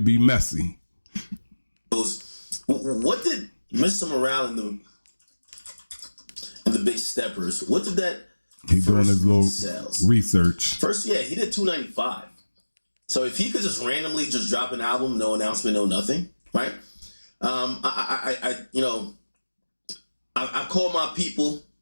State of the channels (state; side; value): inverted; both; correlation -1.00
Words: be messy. What did Mr. Morale and the Big Steppers? What did that? He's doing his little research. First, yeah, he did 295. So if he could just randomly just drop an album, no announcement, no nothing, right? I called my people,